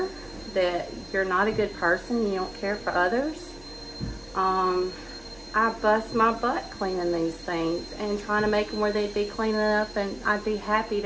that you're not a good person, you don't care for others. I bust my butt cleaning these things and trying to make them where they'd be clean enough, and I'd be happy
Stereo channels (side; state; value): right; noise; rumble, 25 dB below the sound